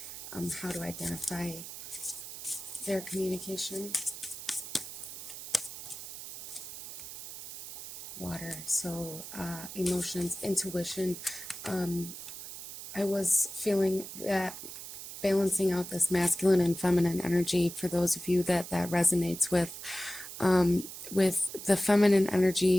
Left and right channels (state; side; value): noise; right; hiss, 11 dB below the sound